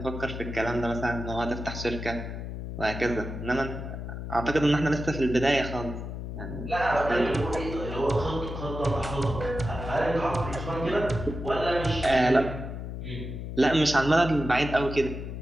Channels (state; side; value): noise; left; hum, 7 dB below the sound